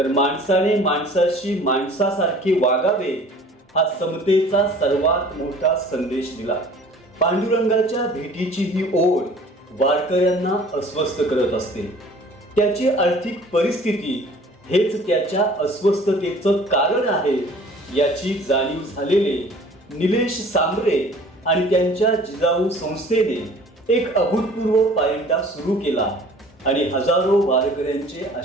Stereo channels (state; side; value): normal; both; correlation 0.49